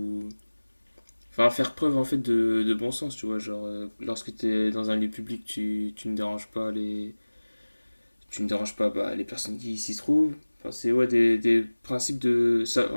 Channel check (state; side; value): inverted; both; correlation -1.00